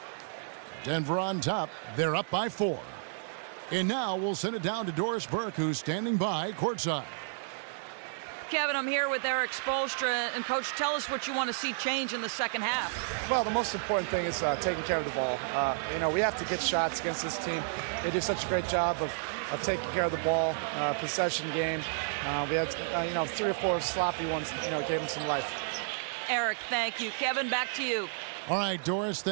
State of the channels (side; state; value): left; silent; 57 dB below the other